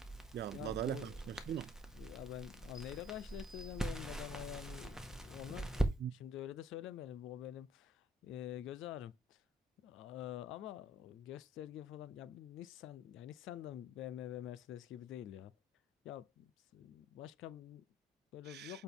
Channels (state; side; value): normal; both; correlation 0.59